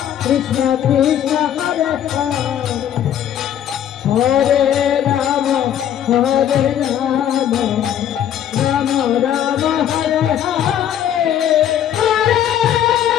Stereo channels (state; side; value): quieter; right; 10.2 dB